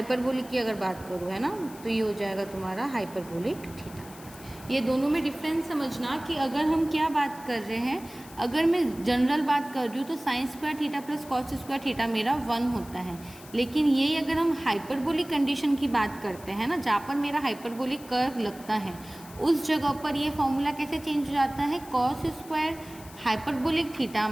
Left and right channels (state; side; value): noise; left; hiss, 20 dB below the sound